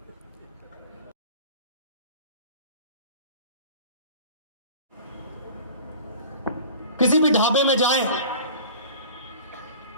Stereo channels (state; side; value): inverted; both; correlation -0.42